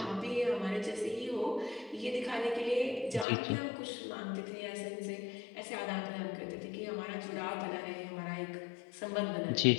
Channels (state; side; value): drops out; right; at 3.2 s